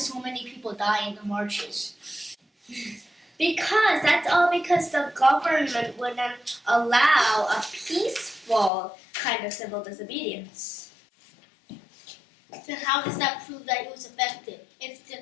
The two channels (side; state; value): right; drops out; at 8.7 s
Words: many people die in the marches? Because the government wouldn't allow a peaceful kind of civil disobedience. Then how does that prove that it was effective? If